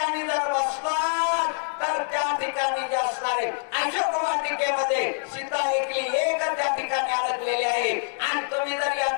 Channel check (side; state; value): right; silent; digital silence